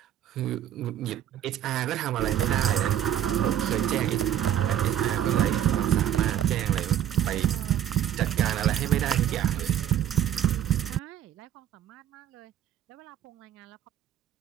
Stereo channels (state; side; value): quieter; left; 10.9 dB